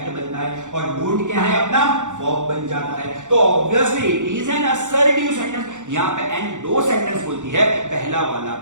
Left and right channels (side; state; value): left; late; 0.85 ms